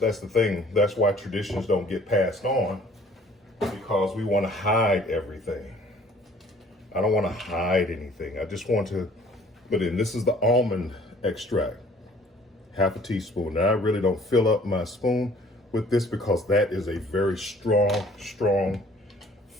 thing. That's why traditions don't get passed on, because we want to hide everything. I don't want to hide anything. I just want to put in, this is the almond extract, half a teaspoon. Now I really don't fill up my spoon with this because that is a very strong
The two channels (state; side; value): normal; both; correlation 0.55